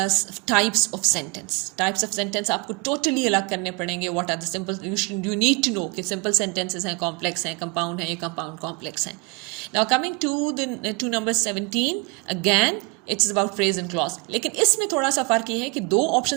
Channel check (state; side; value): quieter; left; 28.7 dB